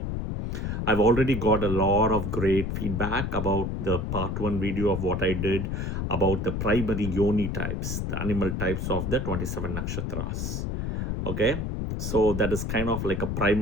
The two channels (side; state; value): left; noise; rumble, 2 dB below the sound